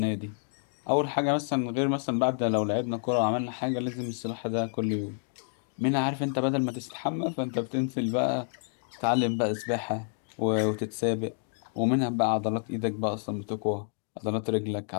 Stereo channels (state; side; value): silent; right; 59 dB below the other